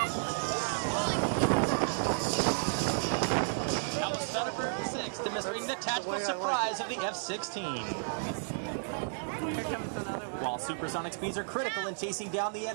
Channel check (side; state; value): left; silent; digital silence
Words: Demonstrating the tactical surprise of the F-16. While supersonic speeds are critical in chasing down the